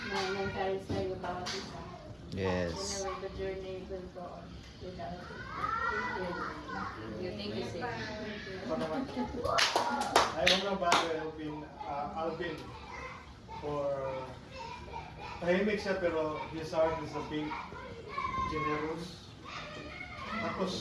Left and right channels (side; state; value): both; identical; correlation 1.00